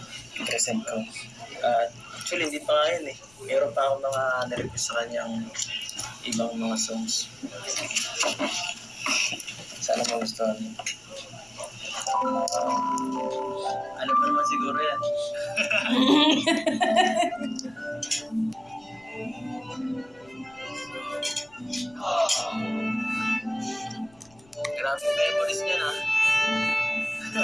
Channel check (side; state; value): left; noise; rumble, 29 dB below the sound